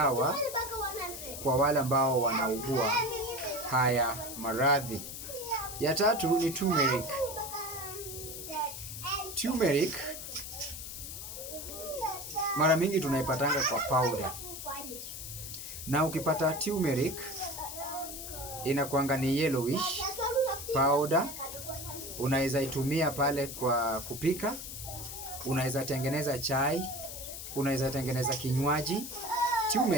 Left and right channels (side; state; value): left; noise; hiss, 9 dB below the sound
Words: kwa wale ambao wanaugua haya maradhi. Ya tatu ni turmeric. Turmeric mara mingi tunaipatanga kwa powder. Na ukipata turmeric inakuanga ni yellowish powder. Unaweza itumia pale kwa kupika, unaweza tengeneza chai, unaweza tengeneza kinywaji.